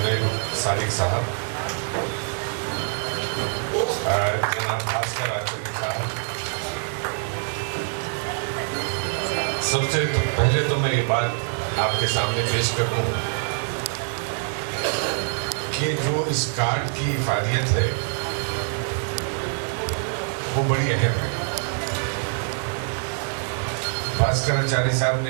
صادق صاحب، جناب بھاسکر آچاری صاحب، سب سے پہلے تو میں یہ بات آپ کے سامنے پیش کروں کہ جو اس کارڈ کی افادیت ہے وہ بڑی اہم ہے۔ بھاسکر آچاری صاحب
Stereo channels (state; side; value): silent; left; 59 dB below the other